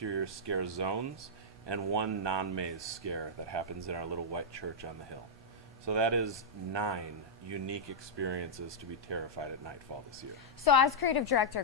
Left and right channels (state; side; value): normal; both; correlation -0.06